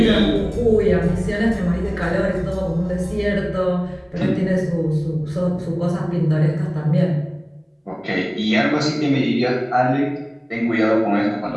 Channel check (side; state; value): both; identical; correlation 1.00